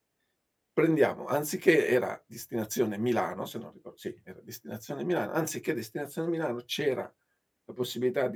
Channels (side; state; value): both; identical; correlation 1.00